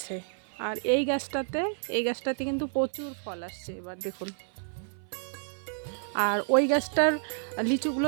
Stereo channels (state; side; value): silent; left; 58 dB below the other